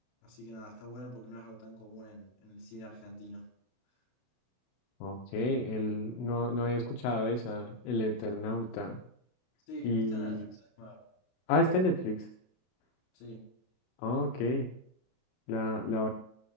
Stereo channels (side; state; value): right; late; 32 ms